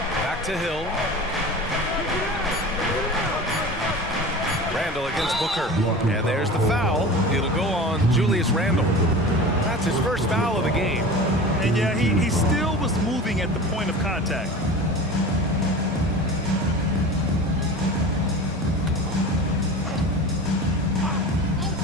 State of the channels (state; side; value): normal; both; correlation 0.35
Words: Back to Hill. Randall against Booker. And there's the foul. It'll go on Julius Randall. That's his first foul of the game. And yeah, he still was moving at the point of contact.